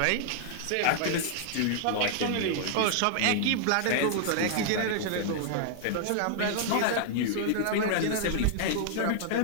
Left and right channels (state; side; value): different; both; correlation -0.01